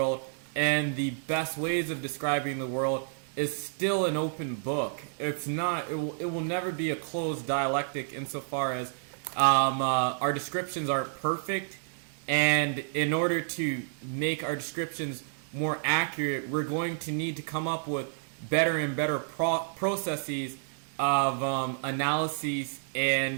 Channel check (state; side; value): silent; left; digital silence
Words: and the best ways of describing the world is still an open book. It's not. It will never be a closed dialectic insofar as our descriptions aren't perfect, and in order to make our descriptions more accurate, we're going to need to come up with better and better processes of analyses